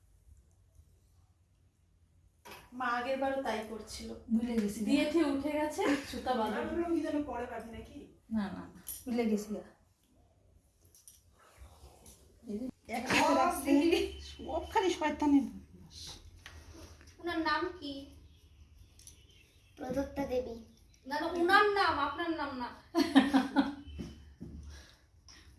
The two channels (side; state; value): both; identical; correlation 1.00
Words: মা আগের বারও তাই করছিল ভুলে গেছি দিয়ে দিয়ে উঠে গেছে সুতা আমি বাঁধা ভাবলাম কি যেন পরে পাবি নাকি না না ভুলে গেছি এক হাতে রাখছি সব খালি শয়তানি। ওনার নাম কি? প্রদত্তা দেবী। না না, ওনার নাম, আপনার নাম না।